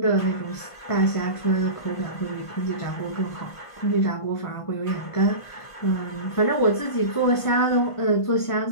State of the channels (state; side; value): late; right; 1.5 ms